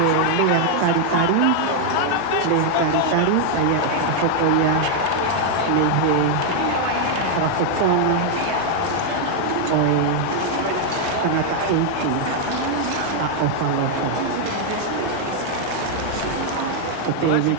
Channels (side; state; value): both; different; correlation 0.00